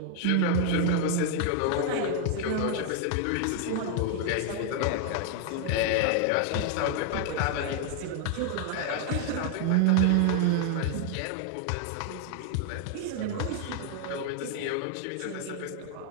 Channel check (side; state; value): both; different; correlation 0.00